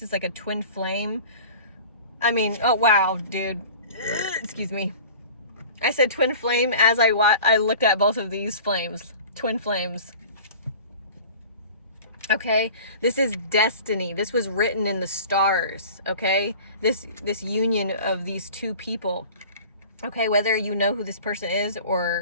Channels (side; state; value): both; inverted; correlation -0.42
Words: is like a twin flame. I mean, oh wow, dude. Excuse me. I said twin flame as I looked at both of these flames. Twin flames. Okay, this is destiny. This was written in the stars. Okay, this union of these two people. Okay, whether you know who this person is